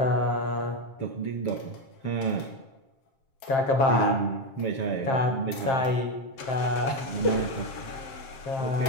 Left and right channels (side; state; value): right; late; 7.4 ms